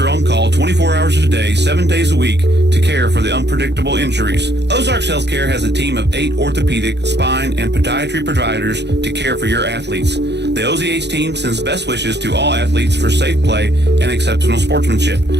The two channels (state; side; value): late; left; 0.50 ms